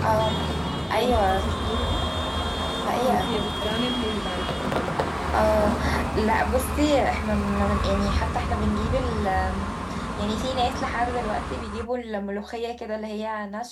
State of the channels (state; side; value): identical; both; correlation 1.00